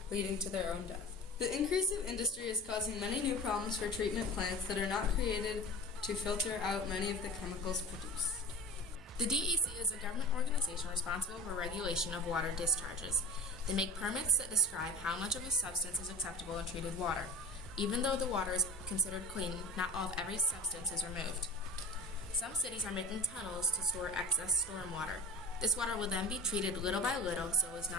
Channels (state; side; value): normal; both; correlation 0.35